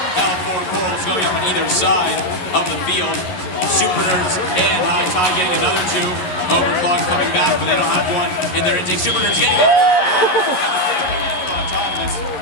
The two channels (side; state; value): right; late; 11 ms